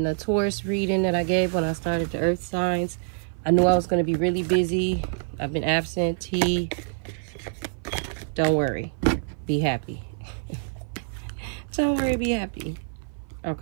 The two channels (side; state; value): left; silent; 55 dB below the other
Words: the Taurus reading that I gave when I started the earth signs, I knew I was going to be really busy. I've been absentee. Don't worry. Be happy. Don't worry, be happy.